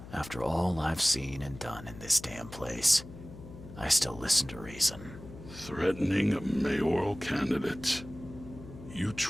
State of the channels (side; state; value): left; noise; hum, 15 dB below the sound